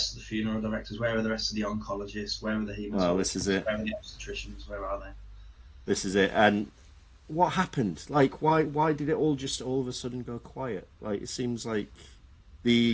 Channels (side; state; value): both; identical; correlation 1.00